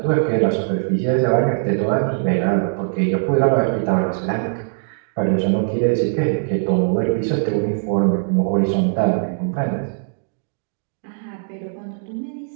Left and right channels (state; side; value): silent; left; digital silence